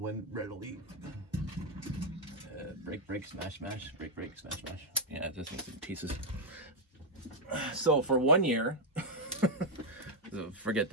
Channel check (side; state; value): both; normal; correlation -0.01